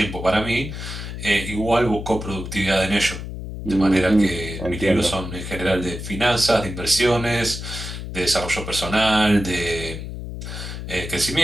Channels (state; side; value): noise; left; hum, 8 dB below the sound